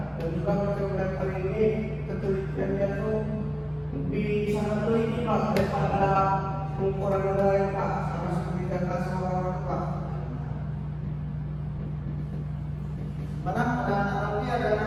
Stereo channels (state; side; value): identical; both; correlation 1.00